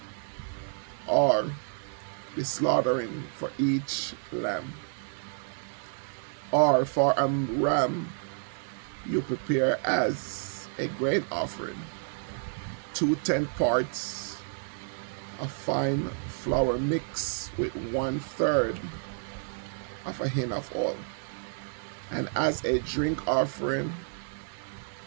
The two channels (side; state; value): left; silent; 58 dB below the other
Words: or the slaughtering for each lamb. Or for a ram you prepare as a grain offering 2/10 parts of fine flour mixed with 1/3 of a hin of oil. And as a drink offering,